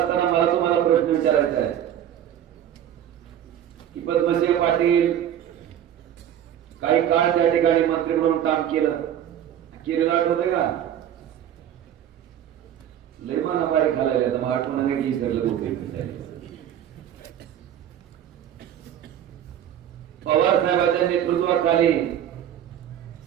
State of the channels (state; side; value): quieter; left; 10.5 dB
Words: मला तुम्हाला प्रश्न विचारायचा आहे की पद्मसिंह पाटील काही काळ त्या ठिकाणी मंत्री म्हणून काम केलेलं आठवतंय का? लय माना बारीक घालायला तर मग आठवण नाही विसरलं गोष्टी. पवार साहेबांच्या नेतृत्वाखाली